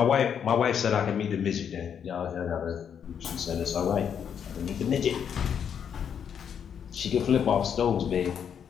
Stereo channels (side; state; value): right; quieter; 8.0 dB